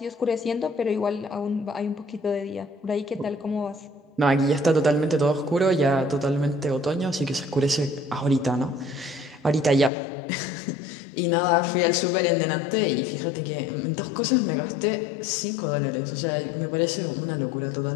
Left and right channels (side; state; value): right; drops out; at 9.9 s